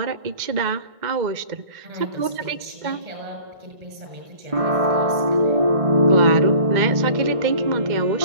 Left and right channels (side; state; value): left; late; 2.0 ms